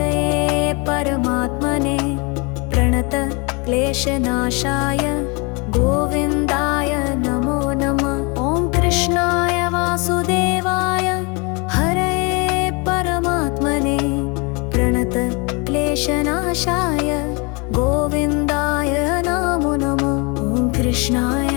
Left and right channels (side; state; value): right; quieter; 30.6 dB